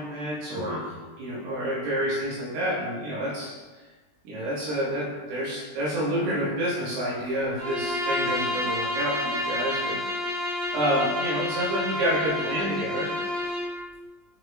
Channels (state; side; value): late; left; 20 ms